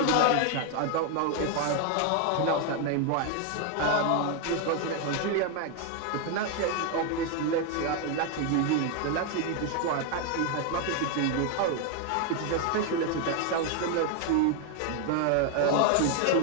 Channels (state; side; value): different; both; correlation 0.01